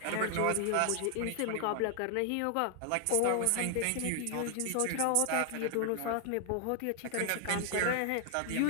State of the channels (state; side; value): different; both; correlation 0.00